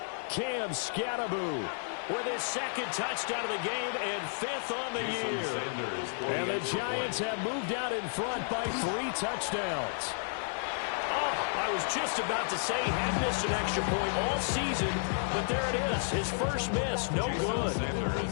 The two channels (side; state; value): right; silent; digital silence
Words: Cam Scannaboo with his 2nd touchdown of the game and 5th on the year. And the Giants have moved out in front by 3 touchdowns. I was just about to say he had missed an extra point all season, but there it is. His first miss, no good.